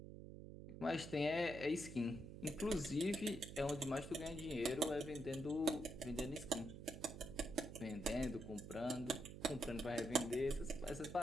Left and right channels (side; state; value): right; noise; hum, 11 dB below the sound